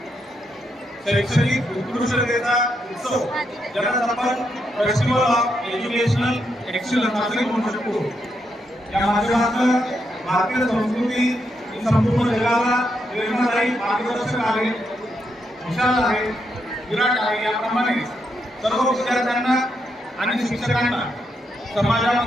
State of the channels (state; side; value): normal; both; correlation 0.81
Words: शैक्षणिक उत्कृष्टतेचा उत्सव ज्याला आपण फेस्टिवल ऑफ एज्युकेशनल एक्सलन्स असे म्हणू शकतो। या माध्यमातून भारतीय संस्कृती ही संपूर्ण जगाला प्रेरणादायी मार्गदर्शक आहे, विशाल आहे, विराट आहे। याप्रमाणे सर्व विद्यार्थ्यांना आणि शिक्षकांना